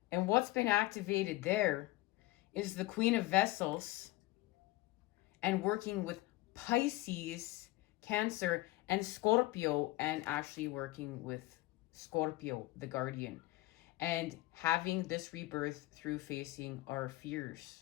And what's been activated there is the Queen of Vessels and working with Pisces, Cancer, and Scorpio, and actually working with Scorpio, the guardian, and having this rebirth through facing our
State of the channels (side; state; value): right; quieter; 18.9 dB